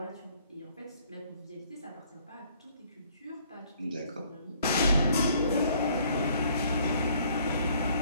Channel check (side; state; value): both; inverted; correlation -0.62